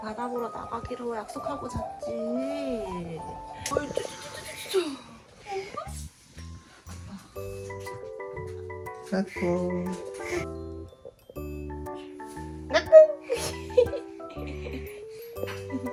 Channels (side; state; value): both; identical; correlation 1.00